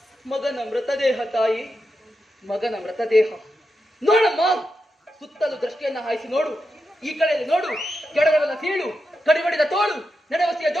ಮಗನ ಮೃತದೇಹ ತಾಯಿ, ಮಗನ ಮೃತದೇಹ. ನೋಡಮ್ಮ, ಸುತ್ತಲೂ ದೃಷ್ಟಿಯನ್ನ ಹಾಯಿಸಿ ನೋಡು. ಈ ಕಡೆಯಲ್ಲಿ ನೋಡು, ಕೆಳಗಡೆಲ್ಲ ಸೀಳು, ಕಡಿಬಡಿದ ತೋಳು, ನೆಡವಸಿಯ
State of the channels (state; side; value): normal; both; correlation 0.87